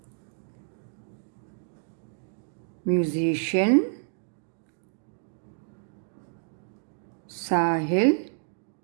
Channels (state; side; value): silent; left; digital silence